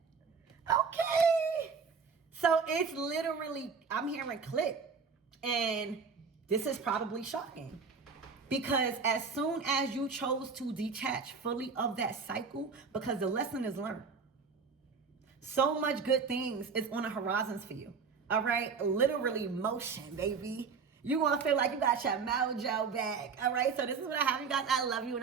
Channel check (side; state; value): left; quieter; 5.3 dB